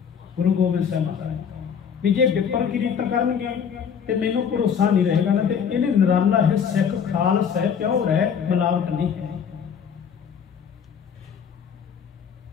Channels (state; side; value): quieter; right; 7.3 dB